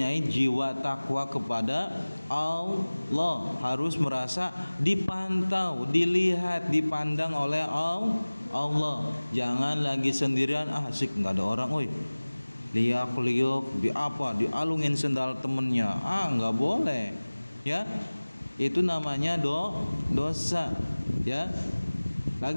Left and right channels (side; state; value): both; inverted; correlation -1.00